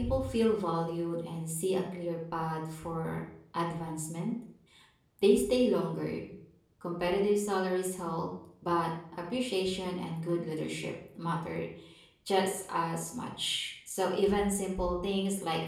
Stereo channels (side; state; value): both; identical; correlation 1.00